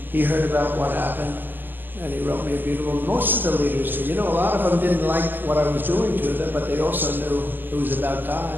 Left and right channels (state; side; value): late; left; 0.090 ms